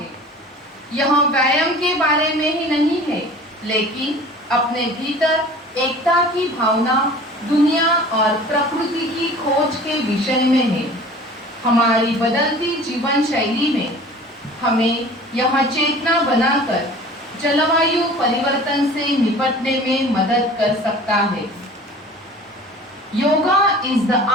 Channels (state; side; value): normal; both; correlation 0.43